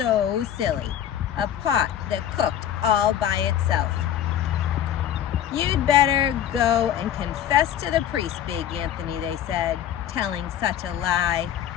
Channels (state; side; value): quieter; right; 10.3 dB